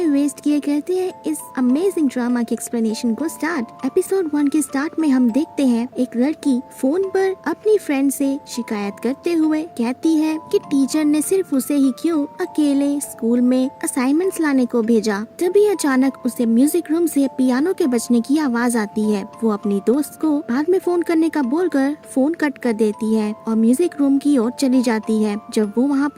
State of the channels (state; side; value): identical; both; correlation 1.00